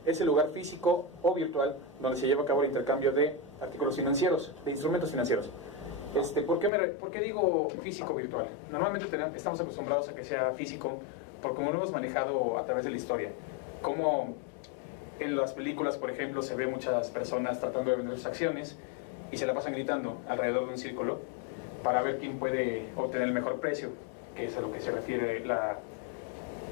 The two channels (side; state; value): right; drops out; at 6.7 s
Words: es el lugar físico o virtual donde se lleva a cabo el intercambio de artículos financieros, de instrumentos financieros. ¿Por qué digo físico virtual? Normalmente estamos acostumbrados a que sea físico, porque como lo hemos manejado a través de la historia, como en las películas, por ejemplo, se ve muchas personas tratando de vender sus acciones y se la pasan gritando alrededor de un círculo para ver quién puede obtener el mejor precio, que es a lo que se refiere la